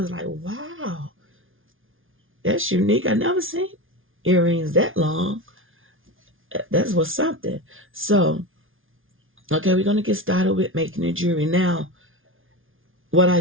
like, wow, that's unique. I never seen earrings that long. That's what's something. So, okay, we're going to get started with making the jewelry. Now, what I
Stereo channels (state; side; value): late; left; 0.58 ms